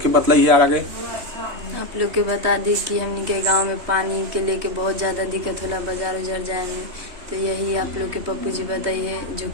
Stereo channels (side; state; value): left; late; 3.2 ms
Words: के बतलाइए आगे। आप लोग के बता दी कि हमनी के गांव में पानी के लेके बहुत ज़्यादा दिक्कत होला बाजार उजार जाए में, तो यही आप लोग के पप्पू जी बताइए जो